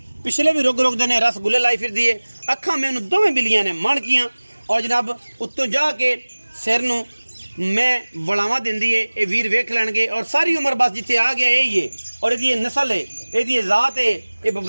पिछले भी रुग रुग देने रसगुल्ले लाई फिरदी है। अखां मैनू दोवें बिल्लियां ने मणकियां और जनाब उत्तों जाके सिर नूं मैं वड़ावा देंदी है। ये वीर वेख लैणगे और सारी उम्र बस जिथे आ गया यही है और ये नस्ल है, ये जात है, ये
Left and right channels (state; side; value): inverted; both; correlation -1.00